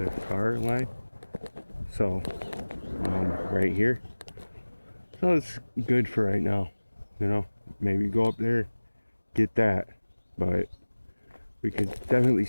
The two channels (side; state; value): both; inverted; correlation -1.00